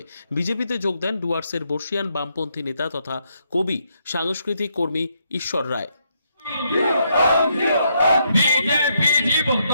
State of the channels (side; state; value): both; inverted; correlation -0.76